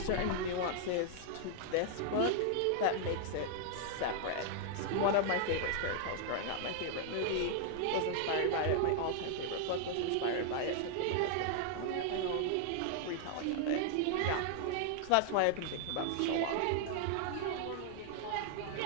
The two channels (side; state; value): both; different; correlation 0.00